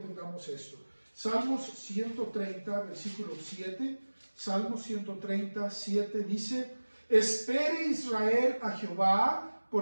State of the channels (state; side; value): inverted; both; correlation -1.00